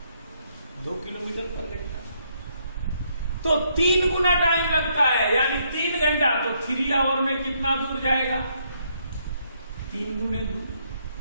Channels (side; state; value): both; inverted; correlation -0.73